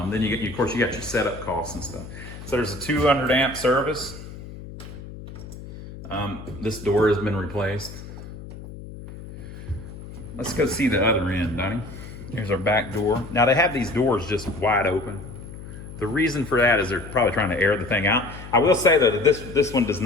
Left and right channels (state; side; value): noise; left; hum, 13 dB below the sound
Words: you get, of course, you got your setup costs and stuff. So there's a 200 amp service. This door has been replaced. Let's go see the other end, Donnie. Here's our back door. Now they have these doors just wide open. The reason for that is they're probably trying to air the thing out. I will say though that this one does